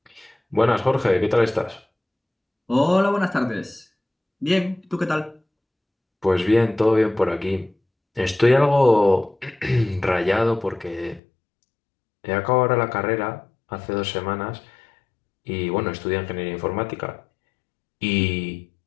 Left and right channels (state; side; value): drops out; right; at 11.2 s